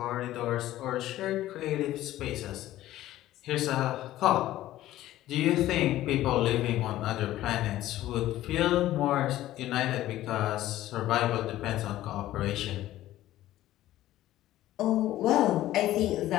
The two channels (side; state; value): right; quieter; 14.5 dB